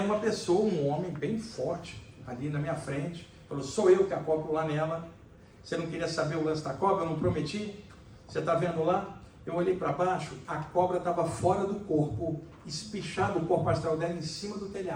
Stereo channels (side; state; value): both; identical; correlation 1.00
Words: uma pessoa, um homem bem forte, ali na minha frente. Falou, sou eu que acoplo lá nela. Você não queria saber o lance da cobra? Eu não prometi? Você está vendo lá? Eu olhei para baixo, a cobra estava fora do corpo, espichado o corpo astral dela em cima do